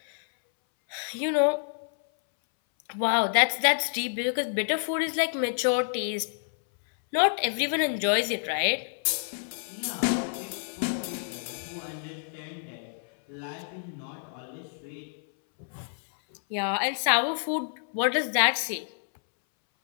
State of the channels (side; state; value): right; silent; 59 dB below the other